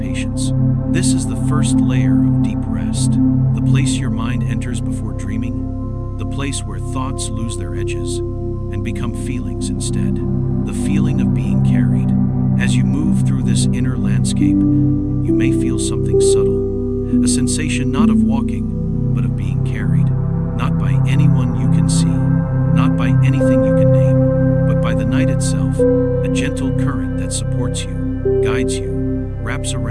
This is the first layer of deep rest, the place your mind enters before dreaming, the place where thoughts lose their edges and become feelings instead. The feeling of being carried. As you move through this inner landscape, you may feel something subtle, a sensation not of walking, but of being carried, not by anyone you can see, not by anything you can name, but by the night itself, a gentle current that supports you, guides you, wraps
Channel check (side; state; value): both; identical; correlation 1.00